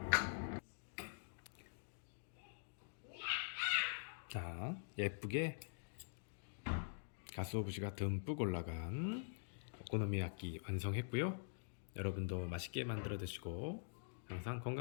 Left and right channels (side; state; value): right; silent; digital silence